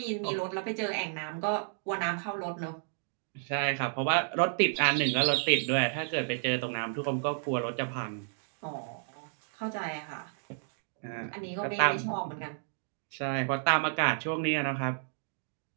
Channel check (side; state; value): left; silent; digital silence